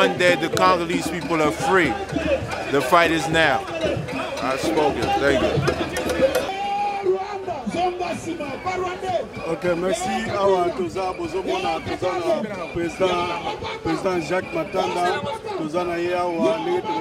day the Congolese people are free. The fight is now. I've spoken. Thank you. Ok, merci. Awa toza bozomona toza na président Jacques Matanda, toza na ye awa ndenge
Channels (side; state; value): both; identical; correlation 1.00